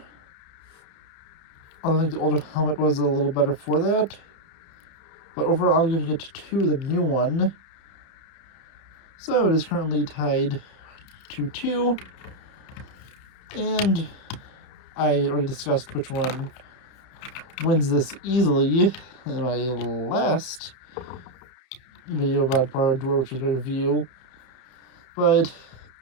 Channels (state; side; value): late; right; 31 ms